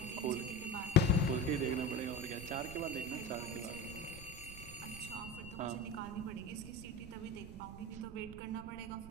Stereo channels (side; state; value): right; noise; rumble, 12 dB below the sound